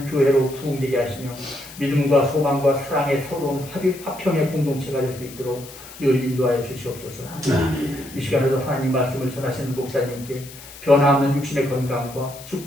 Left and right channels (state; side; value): noise; left; hiss, 17 dB below the sound